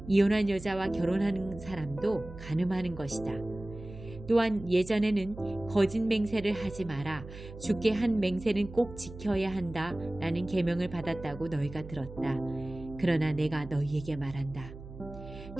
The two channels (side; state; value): right; noise; hum, 14 dB below the sound